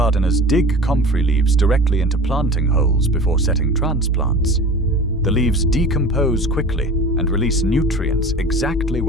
dig Comfrey leaves directly into planting holes before setting transplants. The leaves decompose quickly and release nutrients exactly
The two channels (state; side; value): normal; both; correlation 0.38